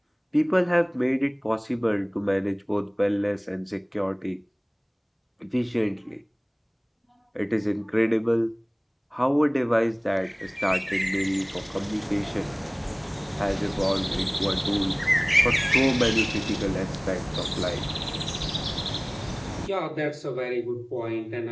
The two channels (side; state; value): both; identical; correlation 1.00